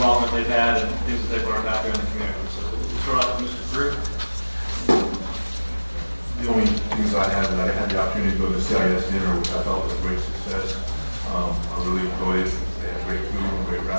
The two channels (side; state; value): both; inverted; correlation -1.00